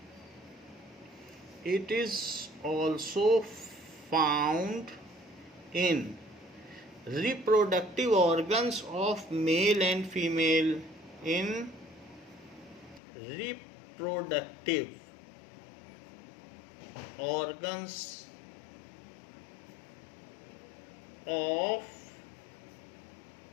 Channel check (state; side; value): drops out; right; at 13.0 s